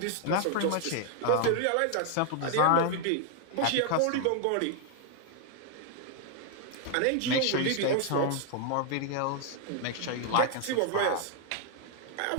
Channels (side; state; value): both; different; correlation 0.00